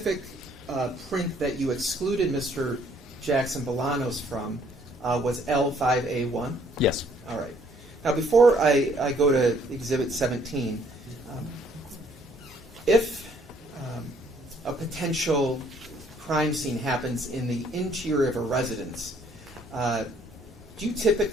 print that you excluded Mr. Jackson-Bolanos from was L5A1? Yes. All right. Now, before I go to Exhibit 17, if a potential crime scene happens in the interior of a residence, do you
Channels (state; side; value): normal; both; correlation 0.63